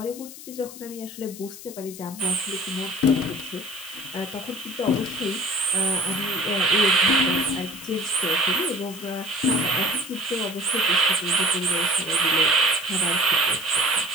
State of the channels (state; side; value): noise; left; hiss, 15 dB below the sound